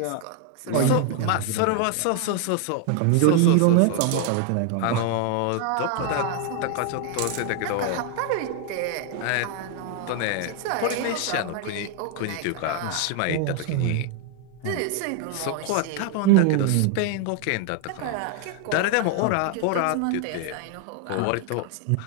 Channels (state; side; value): different; both; correlation 0.00